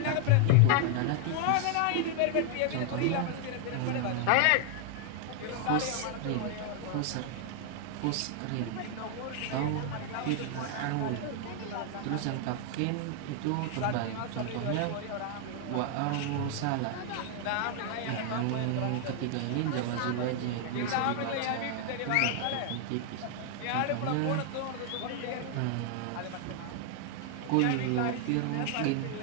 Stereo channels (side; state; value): both; different; correlation 0.00